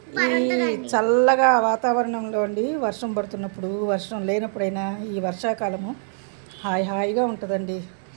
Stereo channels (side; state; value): left; silent; digital silence